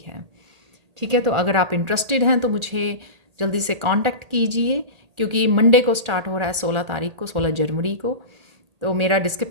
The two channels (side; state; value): left; late; 1.4 ms